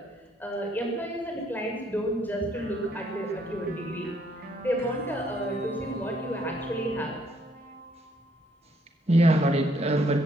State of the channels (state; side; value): normal; both; correlation 0.68